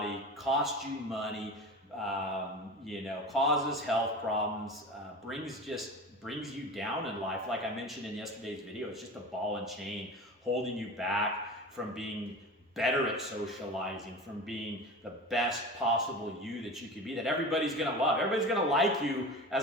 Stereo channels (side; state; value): both; normal; correlation 0.32